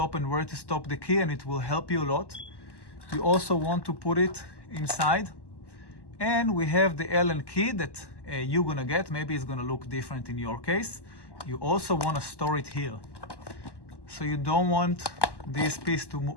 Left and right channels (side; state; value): right; late; 1.1 ms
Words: and where to stop the key, and it will help you a lot. You also want to put it inside. And we have the Allen key that you're gonna get. Maybe it's gonna look different in your case. You also wanna store it here. So you don't want this piece to